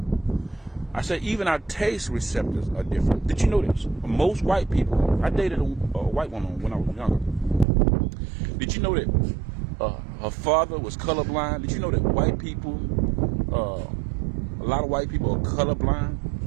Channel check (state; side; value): drops out; left; at 7.7 s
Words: I said even our taste receptors are different. Did you know this? Most white people, I dated a white woman when I was younger. Did you know that her father was colorblind? Did you know that white people, a lot of white people are colorblind?